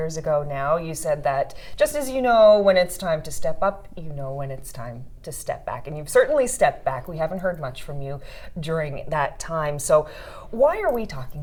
ago now, you said that just as you know when it's time to step up, you know when it's time to step back. And you've certainly stepped back. We haven't heard much from you during that time. So, why are we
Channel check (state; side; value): identical; both; correlation 1.00